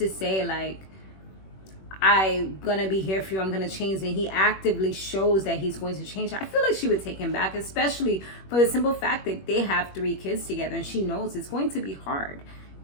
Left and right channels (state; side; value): late; right; 21 ms